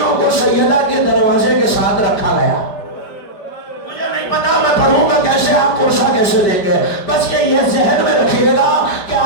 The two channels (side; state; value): right; late; 5.1 ms